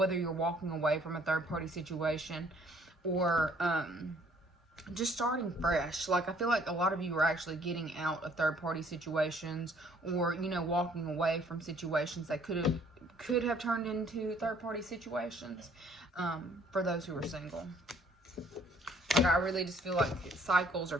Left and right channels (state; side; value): normal; both; correlation 0.61